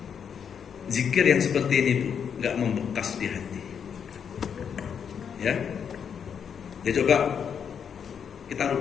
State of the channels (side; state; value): right; quieter; 7.4 dB